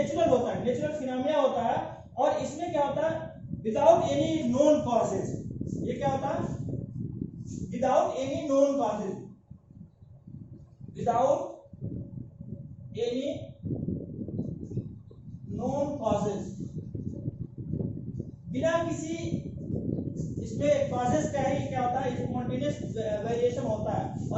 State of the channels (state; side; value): identical; both; correlation 1.00